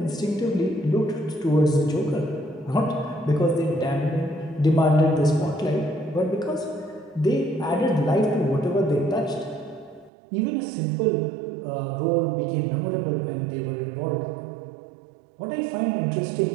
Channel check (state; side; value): drops out; left; at 10.1 s